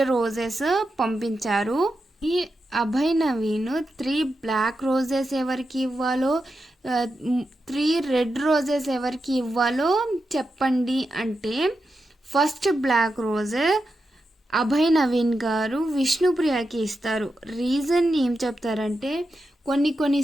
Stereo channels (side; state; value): both; normal; correlation 0.88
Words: రోజెస్ పంపించారు. ఈ అభయ్ నవీన్ 3 బ్లాక్ రోజెస్ ఎవరికి ఇవ్వాలో, 3 రెడ్ రోజెస్ ఎవరికి ఇవ్వాలో చెప్పండి అంటే, first black rose Abhay Naveen గారు విష్ణుప్రియకి ఇస్తారు. రీజన్ ఏం చెప్తారంటే,